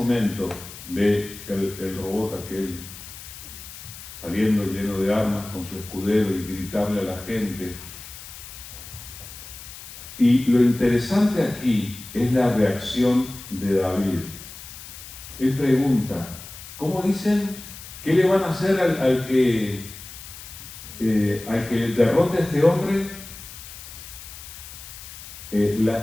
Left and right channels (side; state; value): left; noise; hiss, 14 dB below the sound